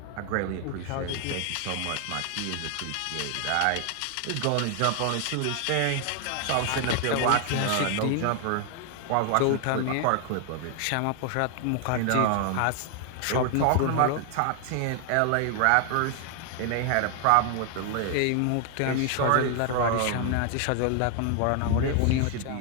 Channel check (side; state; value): both; different; correlation 0.00